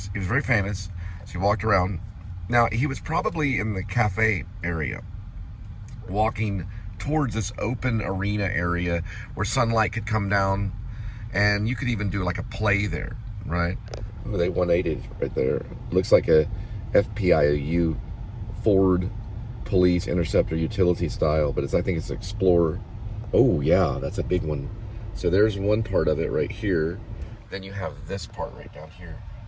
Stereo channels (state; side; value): identical; both; correlation 1.00